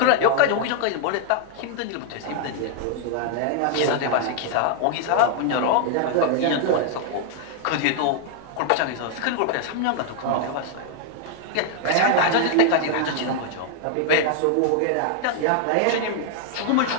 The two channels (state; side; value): different; both; correlation 0.00